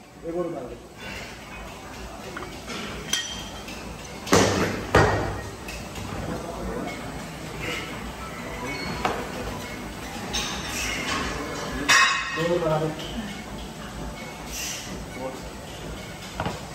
एक और उतार दो।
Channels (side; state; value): both; identical; correlation 1.00